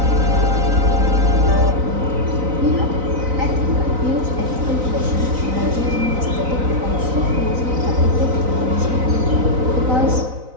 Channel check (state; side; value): late; left; 4.0 ms